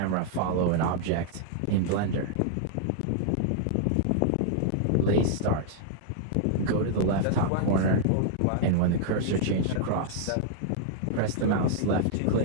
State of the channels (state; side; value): different; both; correlation -0.01